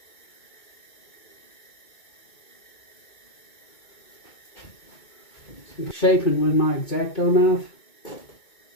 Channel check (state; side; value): late; right; 2.2 ms